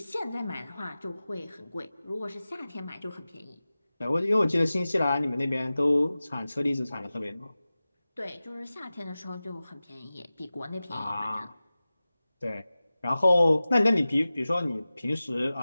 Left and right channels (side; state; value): both; inverted; correlation -0.96